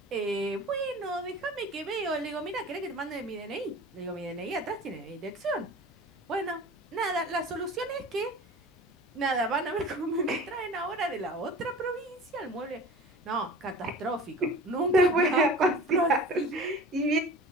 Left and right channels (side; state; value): both; normal; correlation 0.39